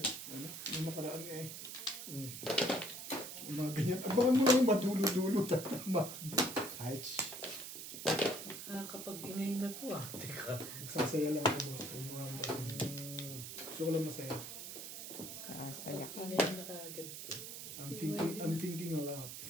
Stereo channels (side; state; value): right; noise; hiss, 9 dB below the sound